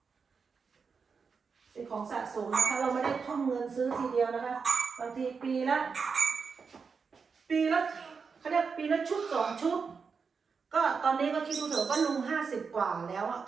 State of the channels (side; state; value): left; quieter; 5.4 dB